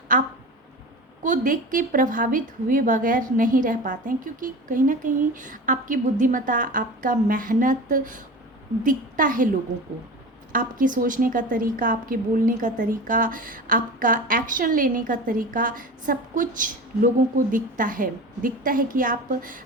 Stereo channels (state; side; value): normal; both; correlation 0.32